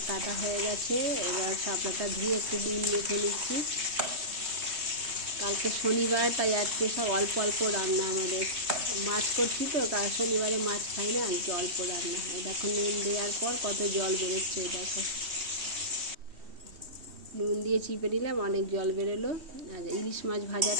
কাটা হয়ে গেছে, এবার শাপলাটা ধুয়ে একটু নুন মেখে নিচ্ছি। কালকে শনিবার, তাই আজকে সব অল্প অল্প রান্না আমাদের। মাছ করছি তো, কাল শনিবারে মাছ খাই না, আজকে অল্প রান্না। এই দেখো নুন দেওয়ার পর কত জল বেরোচ্ছে, এই দেখো। নুন দিয়ে চিপে নিলাম, অনেক জল বেরোলো। আর ইলিশ মাছ ভাজার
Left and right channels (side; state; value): left; late; 3.2 ms